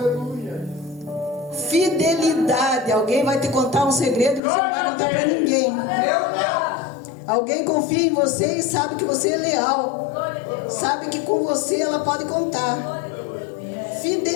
Fidelidade, alguém vai te contar um segredo e você não vai contar para ninguém. Alguém confia em você e sabe que você é leal, sabe que com você ela pode contar.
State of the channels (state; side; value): drops out; right; at 4.4 s